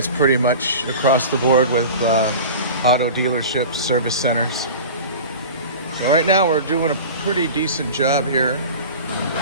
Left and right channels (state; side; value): inverted; both; correlation -0.35